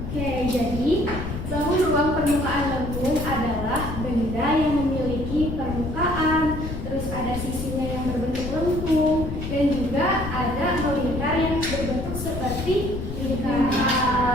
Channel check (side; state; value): left; noise; rumble, 6 dB below the sound